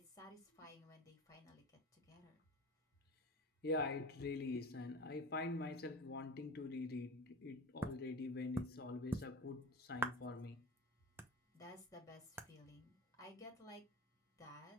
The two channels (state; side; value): normal; both; correlation 0.32